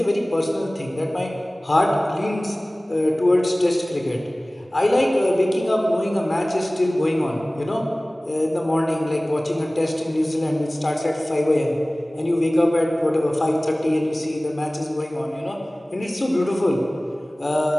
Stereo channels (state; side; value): normal; both; correlation 0.98